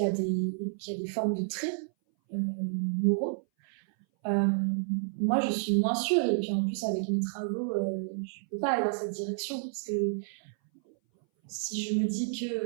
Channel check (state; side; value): silent; left; 58 dB below the other